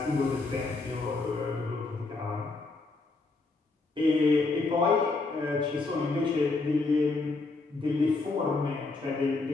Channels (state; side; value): quieter; right; 3.6 dB